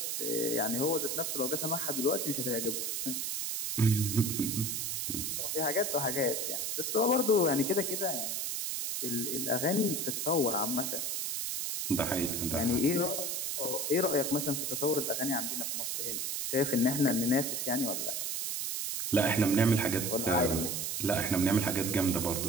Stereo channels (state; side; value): noise; right; hiss, 1 dB below the sound